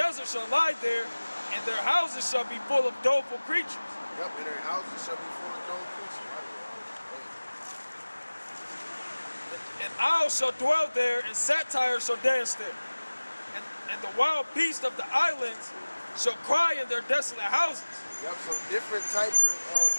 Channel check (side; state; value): both; inverted; correlation -1.00